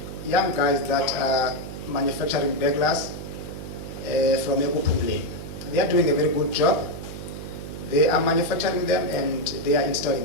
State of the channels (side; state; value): right; noise; hum, 10 dB below the sound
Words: young guys that are manufacturing beglars from Ekupumle. They are doing a very good job. They are manufacturing them and they are